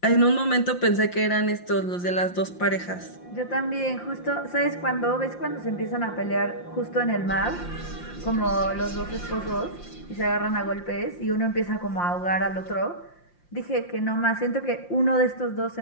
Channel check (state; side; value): late; right; 5.7 ms